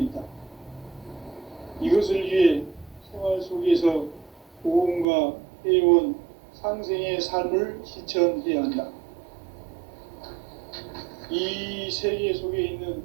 이것을 위해 생활 속에서 보험과 회원, 상생의 삶을 실천해야 한다. 이 세계 속에 있는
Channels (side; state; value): left; drops out; at 5.1 s